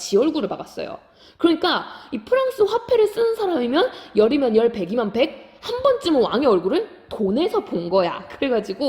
얼굴을 박았어요. 그러니까 이 프랑스 화폐를 쓰는 사람이면 열이면 열, 백이면 백, 한 번쯤은 왕의 얼굴을 돈에서 본 거야.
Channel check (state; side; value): identical; both; correlation 1.00